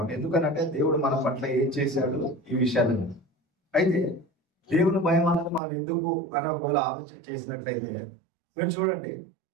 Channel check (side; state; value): left; drops out; at 5.6 s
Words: ఎందుకనంటే దేవుడు మన పట్ల ఏం చేశాడు ఈ విషయాలను. అయితే దేవుని భయం అన్నది మనం ఎందుకు అని ఒకవేళ ఆలోచన చేసినట్లయితే, మీరు చూడండి,